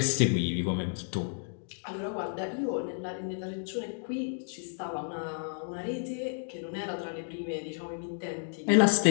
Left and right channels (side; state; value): right; silent; digital silence